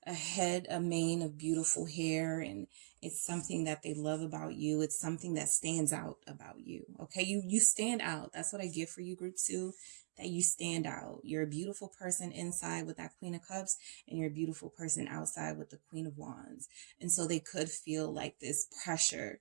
head, a mane of beautiful hair, and it's something that they love about you. It's something that stands out about you. Okay. You stand out. That's what I get for you, group 2. That you stand out. You're a beautiful person inside with that Queen of Cups, and you're a beautiful person outside with the Queen of Wands. And so they could feel like this pressure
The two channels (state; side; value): silent; left; digital silence